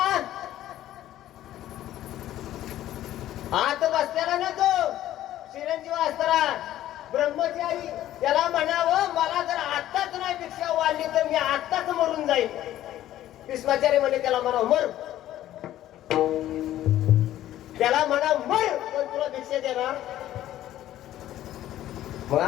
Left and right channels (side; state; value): right; quieter; 13.2 dB